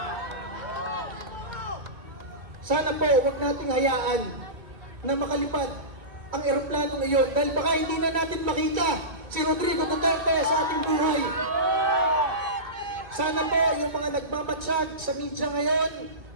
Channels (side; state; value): left; late; 2.0 ms